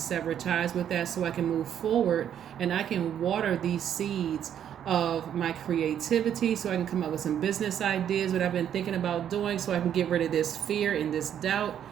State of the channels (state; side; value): quieter; left; 9.6 dB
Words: sever ties with that so I can move forward, and I can water these seeds of my creativity, so I can come up with some business ideas, what I've been thinking about doing, so I can get rid of this fear and this doubt,